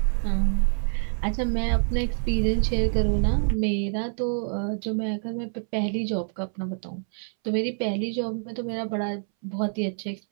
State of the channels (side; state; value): left; silent; 61 dB below the other